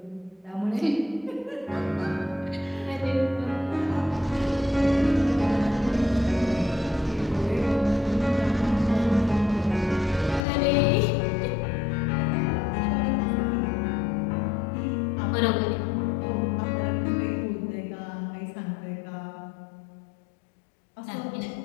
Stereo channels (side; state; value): right; drops out; at 10.5 s